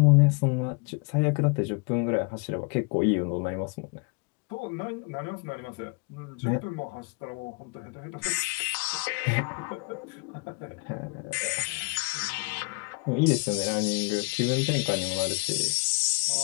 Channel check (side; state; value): right; quieter; 32.6 dB